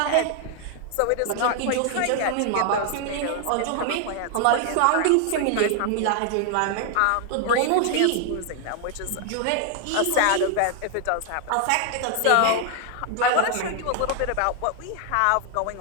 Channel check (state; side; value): different; both; correlation 0.00